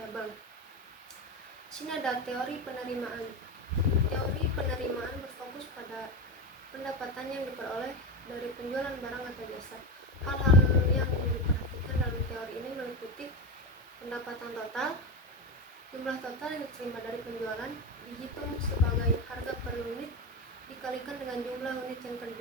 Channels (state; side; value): normal; both; correlation 0.19